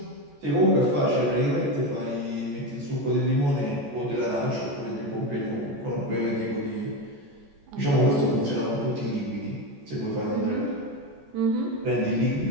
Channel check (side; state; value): left; late; 14 ms